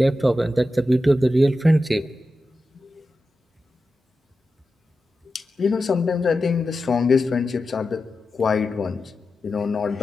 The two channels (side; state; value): both; normal; correlation 0.91